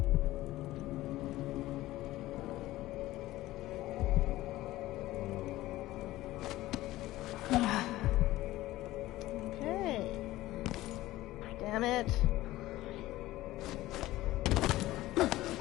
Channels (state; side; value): quieter; right; 16.6 dB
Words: Okay. Damn it.